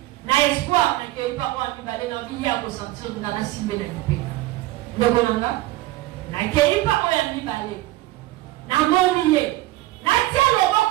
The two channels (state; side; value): quieter; left; 17.5 dB